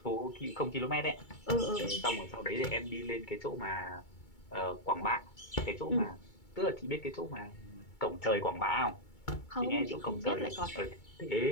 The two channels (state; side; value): late; right; 2.2 ms